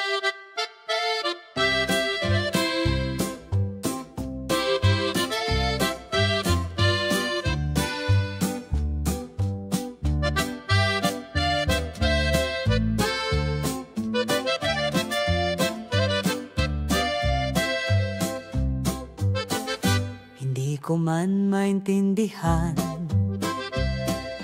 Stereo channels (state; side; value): identical; both; correlation 1.00